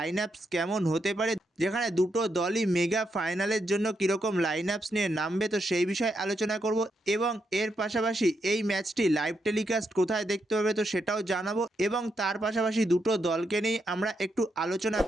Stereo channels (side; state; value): both; normal; correlation 0.81